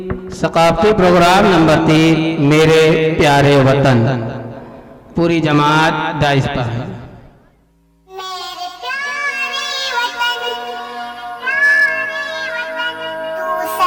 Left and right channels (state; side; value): identical; both; correlation 1.00